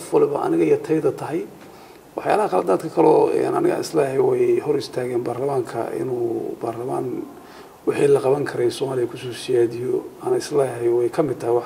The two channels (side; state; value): both; identical; correlation 1.00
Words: walba aniga iyo tayada tahay waxyaalaha qaladaadka kale oo aniga islaahay way hor istaageen baarlamaanka inuu baarlamaan wixii la qaban karay Soomaaliya ku soo siyaadiyo ana islaahay way ka mid tahay